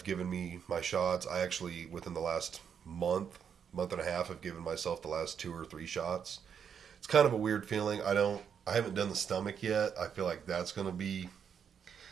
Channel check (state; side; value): quieter; left; 7.5 dB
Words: given me my shots. I actually, within the last month and a half, have given myself the last 2 or 3 shots. It's kind of a weird feeling. I haven't done the stomach yet. I feel like that's gonna be